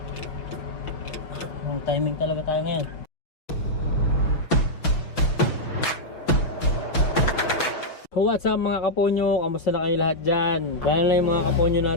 Ang timing talaga tayo ngayon. What's up mga kaponyo? Kamusta na kayo lahat dyan? Lalo na yung mga kaponyo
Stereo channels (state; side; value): late; right; 6.1 ms